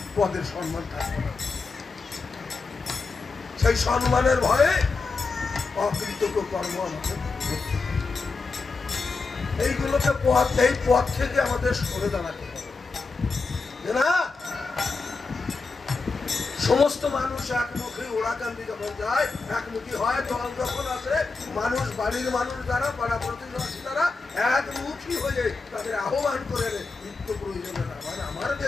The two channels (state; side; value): quieter; right; 4.2 dB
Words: পদের সম্মান থাকবে না। সেই সম্মানের ভয়ে অকৃতজ্ঞ কর্ম আমাকে এইগুলোকে এই পথ থেকে আমাদের সরে দাঁড়াতে হবে না। সমস্ত মানুষ একমুখী ওড়াকান্দি যখন যায়, একমুখী হয়, দল যখন আসে, মানুষ বাড়ির মানুষ যারা পাড়া প্রতিবেশী যারা একমুখী হয়ে তাদের আহ্বান করে নিত্য প্রয়োজনে না। মানে আমার